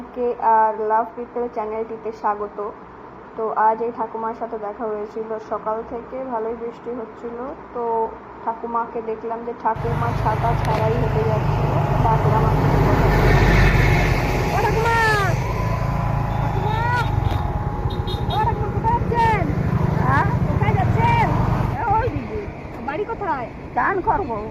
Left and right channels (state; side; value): identical; both; correlation 1.00